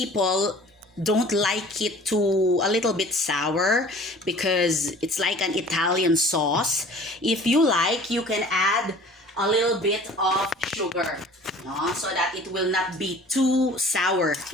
don't like it too a little bit sour because it's like an Italian sauce. If you like, you can add a little bit of sugar, no? So that it will not be too sour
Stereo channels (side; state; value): both; normal; correlation 0.47